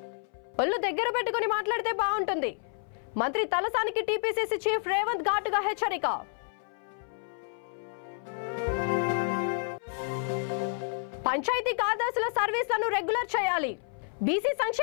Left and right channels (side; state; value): right; silent; 58 dB below the other